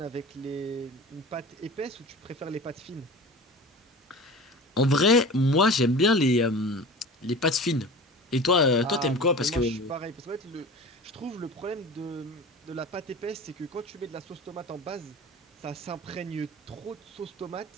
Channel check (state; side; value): normal; both; correlation 0.36